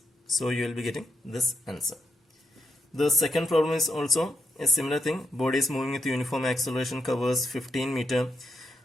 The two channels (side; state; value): both; normal; correlation 0.82